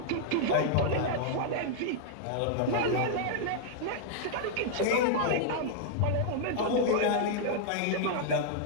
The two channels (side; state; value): both; different; correlation -0.01